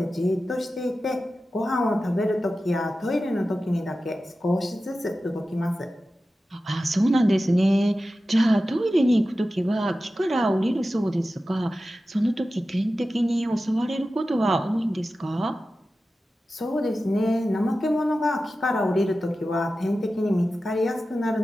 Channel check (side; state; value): both; normal; correlation 0.94